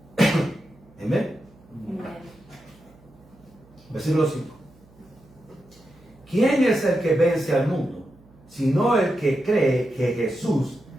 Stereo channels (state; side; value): noise; right; hum, 27 dB below the sound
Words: Amén. Amen. Versículo 5. ¿Quién es el que vence al mundo? Sino el que cree que Jesús